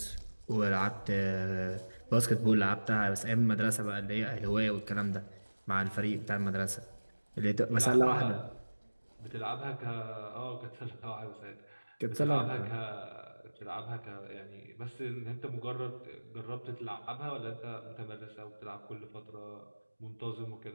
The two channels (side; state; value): both; inverted; correlation -1.00